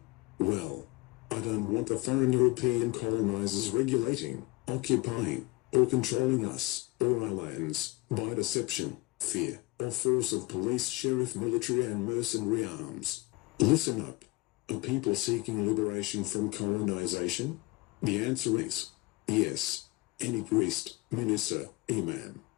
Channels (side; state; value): right; quieter; 22.9 dB